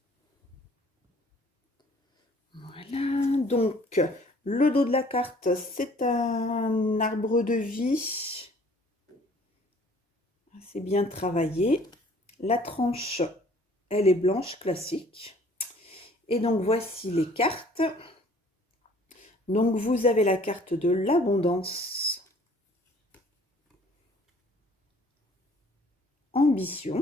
Voilà, donc le dos de la carte, c'est un arbre de vie. C'est bien travaillé. La tranche, elle est blanche, classique. Et donc, voici les cartes. Donc, vous avez la carte de l'abondance,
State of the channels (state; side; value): normal; both; correlation 0.55